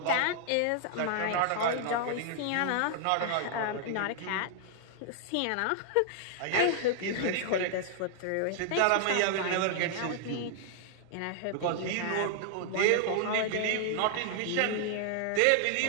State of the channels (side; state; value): both; different; correlation -0.01